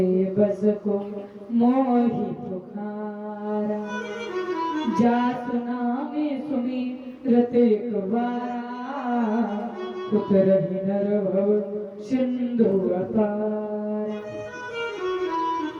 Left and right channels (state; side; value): identical; both; correlation 1.00